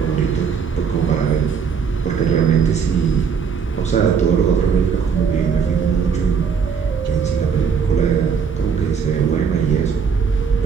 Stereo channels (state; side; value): quieter; left; 6.3 dB